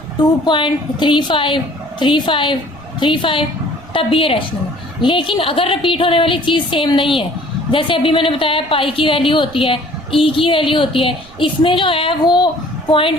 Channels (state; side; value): noise; right; rumble, 23 dB below the sound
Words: 2.35 35 35 तब भी ये रैशनल है। लेकिन अगर रिपीट होने वाली चीज़ सेम नहीं है, जैसे अभी मैंने बताया पाई की वैल्यू होती है, ई की वैल्यू होती है, इसमें जो है वो